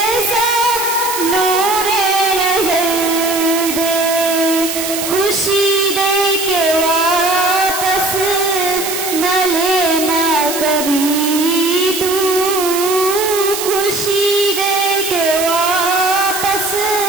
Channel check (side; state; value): right; noise; hiss, 5 dB below the sound